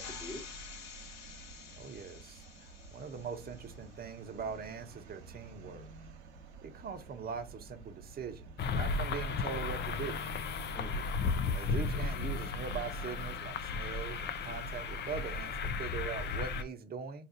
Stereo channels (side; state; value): both; normal; correlation 0.22